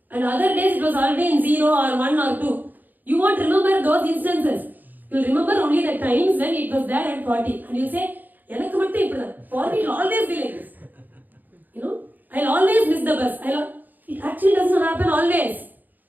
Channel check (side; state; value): left; late; 0.085 ms